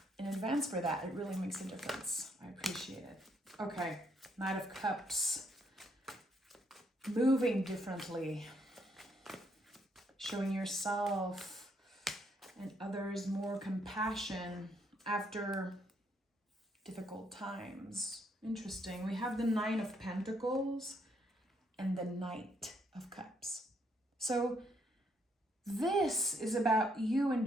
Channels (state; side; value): normal; both; correlation 0.73